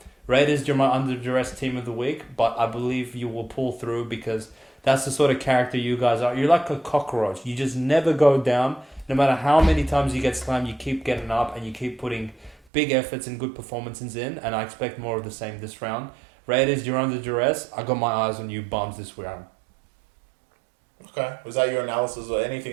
Raiders, you're my under duress team of the week, but I believe you will pull through because that's the sort of character you guys are. You're like a cockroach. You just never go down. No matter how many times you get slammed, you keep getting up and you keep putting big efforts and good performances in, and I expect more of the same this round. Raiders, you're under duress. I got my eyes on you bums this round. Okay. Was that your analysis or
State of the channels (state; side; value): drops out; left; at 12.6 s